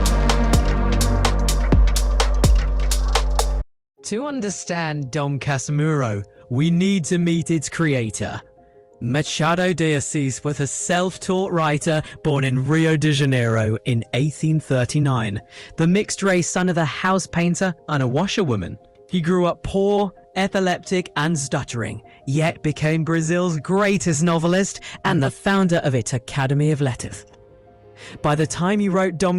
To understand Dom Casmurro, we need to meet its creator. Machado de Assis was a self-taught writer born in Rio de Janeiro in 1839, the mixed-race son of a house painter and a washerwoman. He grew up poor, epileptic and stuttering, yet became Brazil's greatest novelist and the founder of its Academy of Letters. By the time he wrote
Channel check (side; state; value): both; identical; correlation 1.00